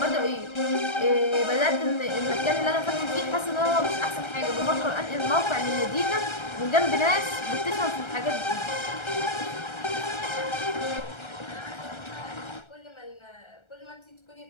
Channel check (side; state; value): right; late; 1.3 ms